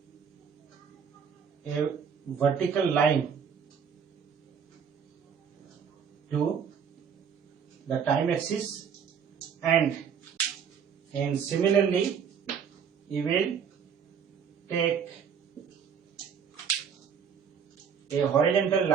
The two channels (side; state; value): left; quieter; 7.1 dB